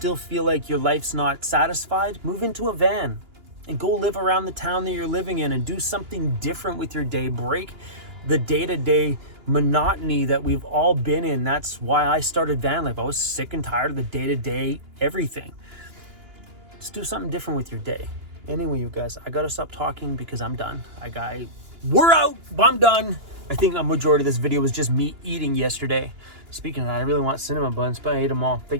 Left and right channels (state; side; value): late; left; 2.9 ms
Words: feel like your life's not satisfied, move into a van and go live around the town that you're living in and do something different with your day. Break the day-to-day monotony that we've all been in. That's why I started Vanlife. I was sick and tired of the day-to-day everything. Let's do something different with your day. Anyway, you guys, I gotta stop talking because I'm done. We're out. I'm done. I think a majority of this video was just me eating yesterday. Speaking of that, I really want cinnamon buns, but I ate them all. I